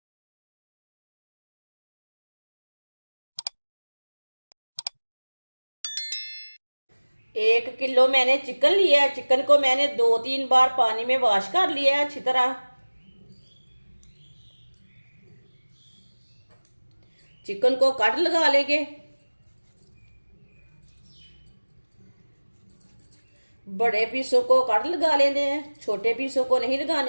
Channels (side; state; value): both; inverted; correlation -1.00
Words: एक किलो मैंने चिकन लिया है। चिकन को मैंने 2-3 बार पानी में वॉश कर लिया है अच्छी तरह। चिकन को कट लगा लेंगे। बड़े पीसों को कट लगा लेने हैं, छोटे पीसों को नहीं